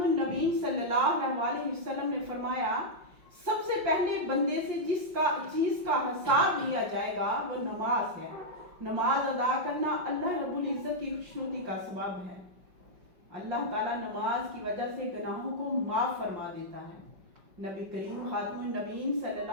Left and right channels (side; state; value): left; late; 5.4 ms